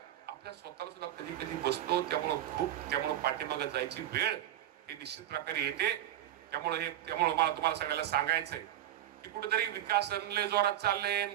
आपल्या स्वतःला सुद्धा कधी कधी बसतो. त्यामुळं पाठीमागे जायची वेळ हे निश्चित प्रकारे येते. त्यामुळे मला तुम्हाला सगळ्याला सांगायचंय की कुठेतरी विकास लय जोरात चालले,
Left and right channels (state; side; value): quieter; left; 12.4 dB